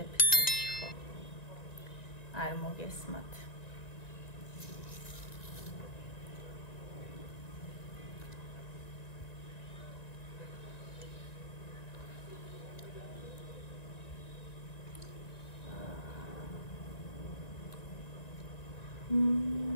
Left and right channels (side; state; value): right; late; 1.9 ms